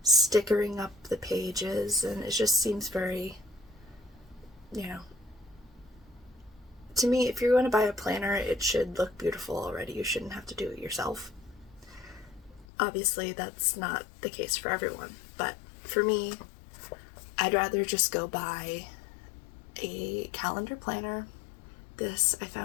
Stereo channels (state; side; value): drops out; right; at 12.7 s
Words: stickering up the pages, and it just seems very, to me, if you're going to buy a planner, it should look beautiful already. You shouldn't have to do it yourself. Obviously, that's not the case for everyone, but for me, I'd rather just go buy a calendar planner. This I